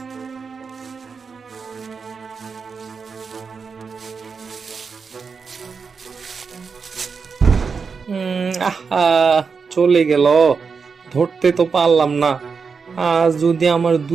আহা, চলে গেল, ধরতে তো পারলাম না। আর যদি আমার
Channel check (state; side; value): quieter; left; 5.4 dB